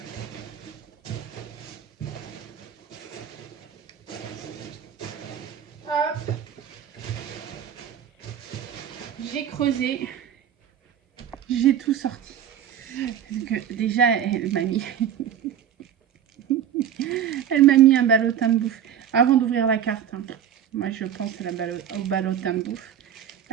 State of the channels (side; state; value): left; quieter; 9.4 dB